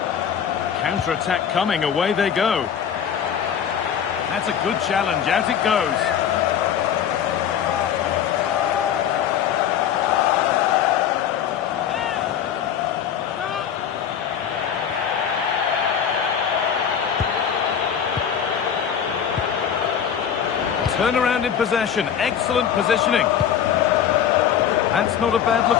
Counter-attack coming, away they go. That's a good challenge, out it goes. Turnaround in possession, excellent positioning. That's not a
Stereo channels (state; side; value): quieter; right; 8.6 dB